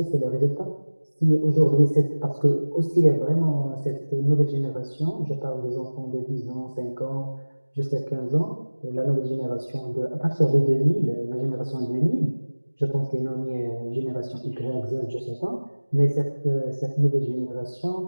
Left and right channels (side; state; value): both; inverted; correlation -1.00